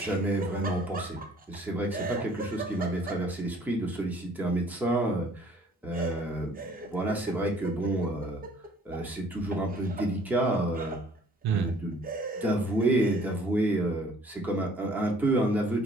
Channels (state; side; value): normal; both; correlation 0.56